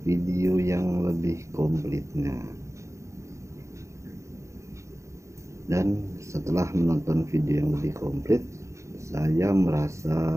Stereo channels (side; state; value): left; late; 0.14 ms